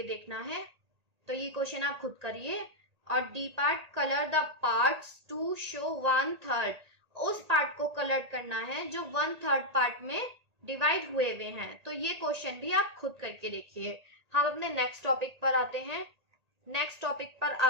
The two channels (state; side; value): late; left; 1.8 ms